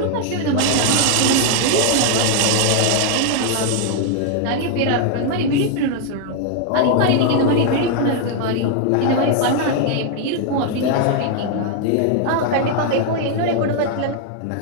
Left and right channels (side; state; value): both; different; correlation 0.00